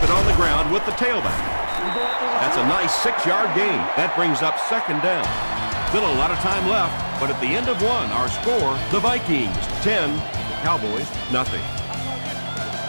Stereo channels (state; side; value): inverted; both; correlation -1.00